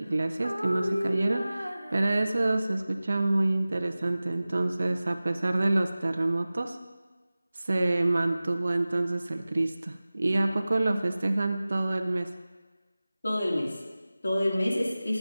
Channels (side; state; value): both; inverted; correlation -0.97